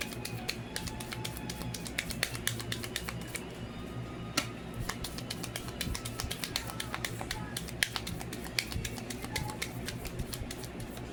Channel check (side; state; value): both; identical; correlation 1.00